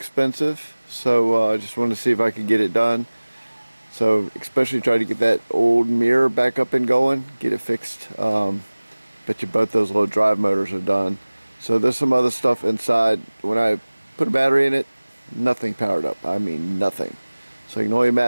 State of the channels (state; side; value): inverted; both; correlation -1.00